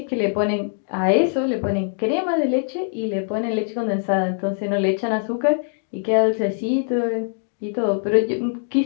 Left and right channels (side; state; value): right; silent; digital silence